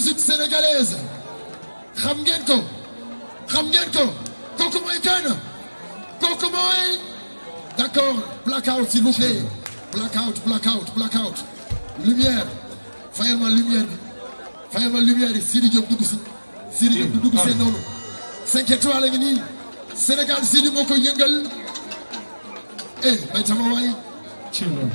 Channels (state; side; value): inverted; both; correlation -1.00